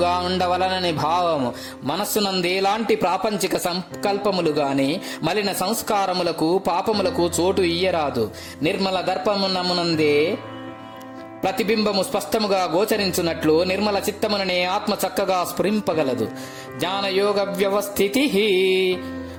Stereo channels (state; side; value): identical; both; correlation 1.00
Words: ఉండవలనని భావము. మనస్సునందేలాంటి ప్రాపంచిక సంకల్పములు గాని మలిన సంస్కారములకు పాపములకు చోటు ఇయ్యరాదు. నిర్మల దర్పమునమునందే ప్రతిబింబము స్పష్టముగా గోచరించున్నట్లు నిర్మల చిత్తముననే ఆత్మ చక్కగా స్ఫురింపగలదు. జ్ఞానయోగ వ్యవస్థితి